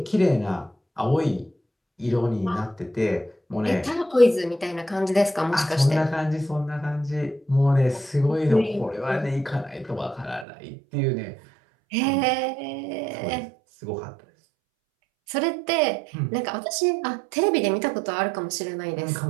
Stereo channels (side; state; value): left; drops out; at 10.5 s